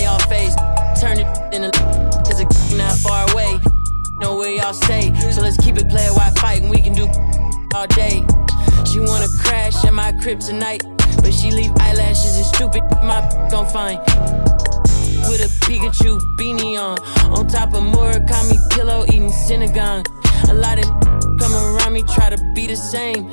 y'all face. Turn it in a cause it's not far away. Know where y'all stay, so let's keep it player while fighting. We can do all day. She wanna crash at my crib tonight, but she leave eyelashes and stupid my gon' find. With a Pikachu beanie on top of Murakami pillow eating Synagogue. A lot of come around me try to be the same,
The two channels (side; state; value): both; inverted; correlation -1.00